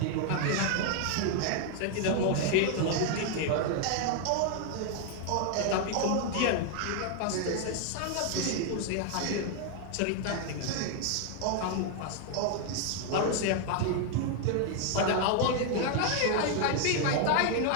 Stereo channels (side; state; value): both; different; correlation 0.00